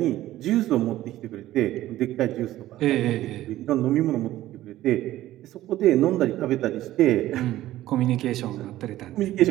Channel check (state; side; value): quieter; left; 14.7 dB